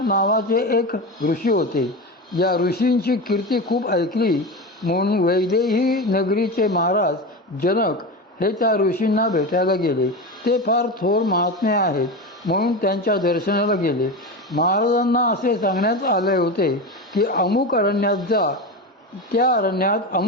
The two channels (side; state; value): both; normal; correlation 0.22